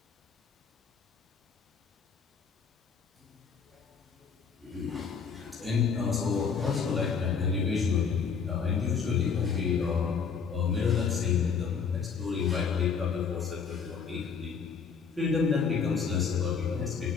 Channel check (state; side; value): quieter; right; 6.1 dB